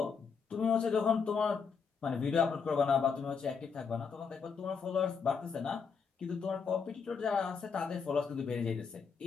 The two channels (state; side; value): quieter; right; 5.9 dB